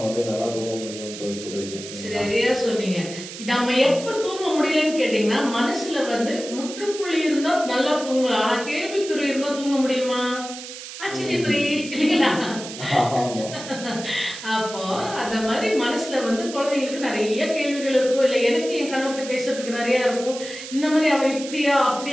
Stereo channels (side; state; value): right; noise; hiss, 11 dB below the sound